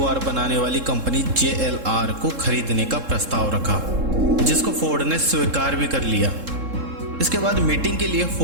बनाने वाली कंपनी JLR को खरीदने का प्रस्ताव रखा, जिसको फोर्ड ने स्वीकार भी कर लिया। इसके बाद मीटिंग के लिए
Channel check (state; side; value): late; left; 3.7 ms